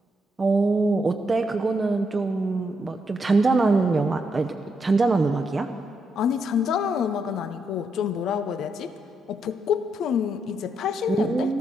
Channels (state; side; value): normal; both; correlation 0.79